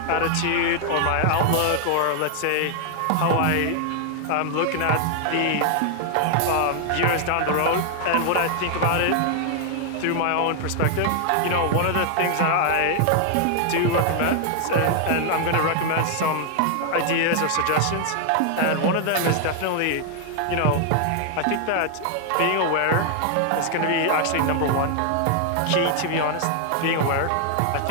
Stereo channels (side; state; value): both; different; correlation 0.00